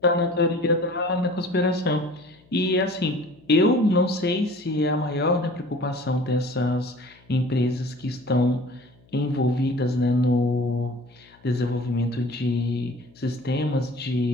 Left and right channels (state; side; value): noise; left; hum, 29 dB below the sound